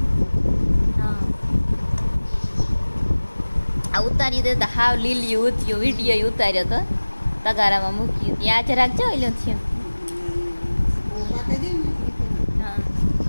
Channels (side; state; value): both; inverted; correlation -1.00